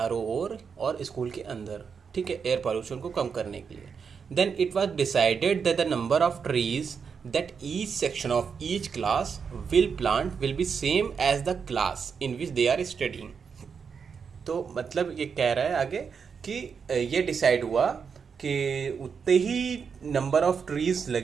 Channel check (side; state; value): left; quieter; 6.2 dB